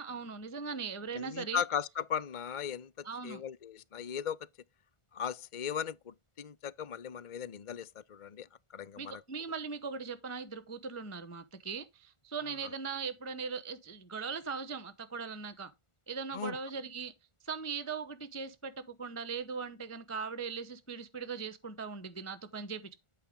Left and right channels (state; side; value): late; right; 1.4 ms